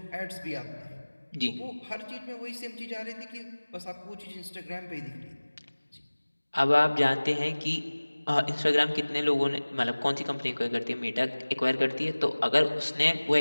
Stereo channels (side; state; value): both; inverted; correlation -1.00